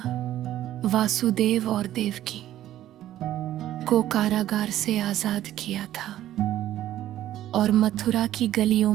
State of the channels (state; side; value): quieter; left; 13.0 dB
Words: वासुदेव और देवकी को कारागार से आजाद किया था और मथुरा की गलियों